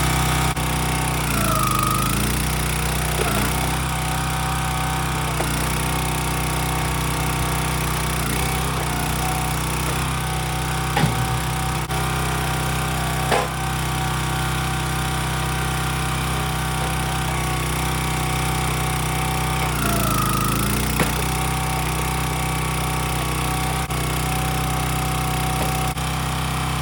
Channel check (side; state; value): both; identical; correlation 1.00